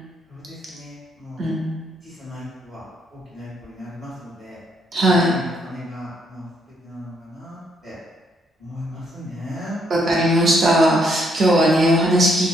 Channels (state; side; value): normal; both; correlation 0.73